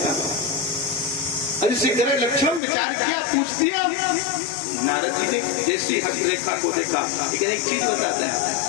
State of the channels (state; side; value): drops out; right; at 2.6 s